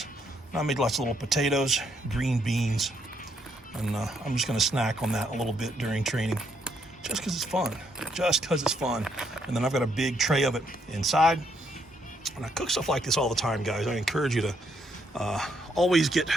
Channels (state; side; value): normal; both; correlation 0.73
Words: I made lots of little potatoes, green beans, and I'm just gonna snack on that a little bit during training, just because it's fun. And then I've got a big tray of it inside. And I cook stuff like this all the time, guys. I encourage you to always get